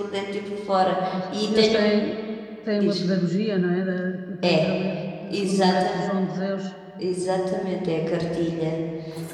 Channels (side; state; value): both; identical; correlation 1.00